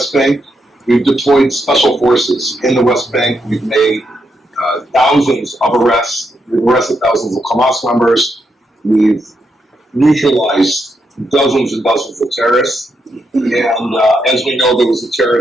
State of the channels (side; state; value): both; normal; correlation 0.81